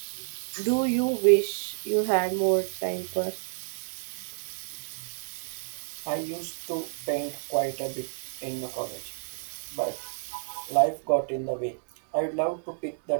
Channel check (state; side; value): silent; left; digital silence